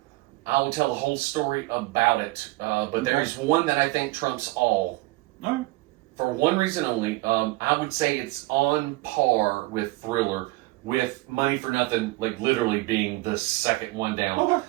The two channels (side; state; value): left; quieter; 20.7 dB